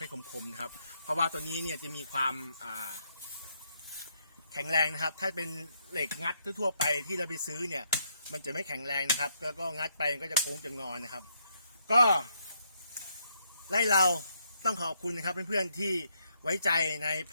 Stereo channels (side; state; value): both; inverted; correlation -0.75